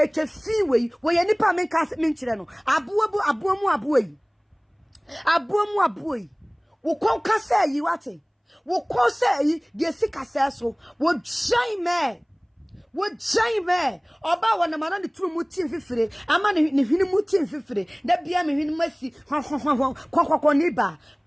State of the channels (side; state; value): both; identical; correlation 1.00